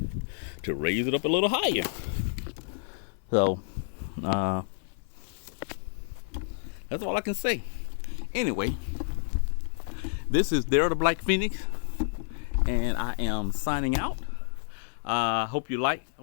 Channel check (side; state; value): right; silent; 58 dB below the other